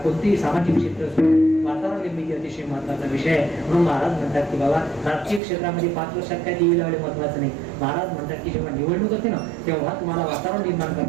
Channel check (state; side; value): drops out; left; at 5.4 s